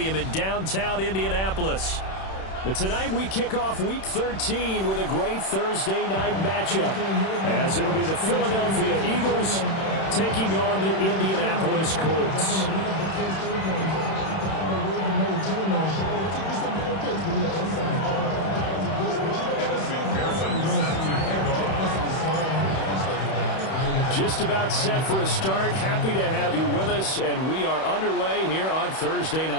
in downtown Indianapolis. But tonight we kick off Week 13 with a great Thursday night matchup, as it'll be the Philadelphia Eagles taking on the Indianapolis Colts. Just about set for a start. Happy to have you with us, and we are underway here on Thursday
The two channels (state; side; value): late; right; 31 ms